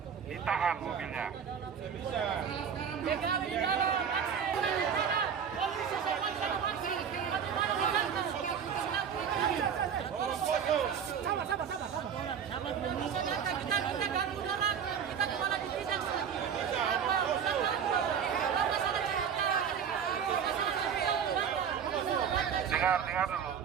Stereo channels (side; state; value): left; quieter; 7.6 dB